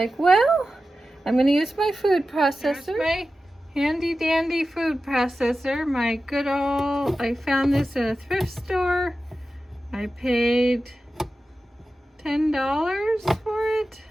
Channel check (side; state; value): both; normal; correlation 0.93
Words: well, I'm going to use my food processor. There's my handy dandy food processor. My good old, I found this in a thrift store. I paid $10 for it.